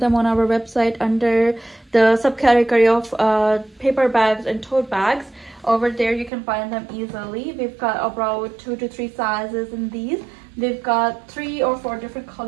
them on our website under the subcategory of paper bags and tote bags. Over there you can find them easily. We've got about 2 to 3 sizes in these. We've got 3 or 4 different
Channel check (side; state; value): left; drops out; at 6.3 s